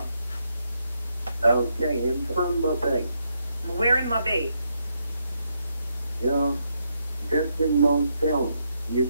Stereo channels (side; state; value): both; inverted; correlation -0.79